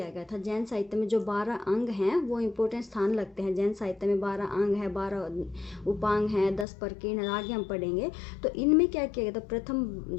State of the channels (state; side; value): drops out; right; at 6.7 s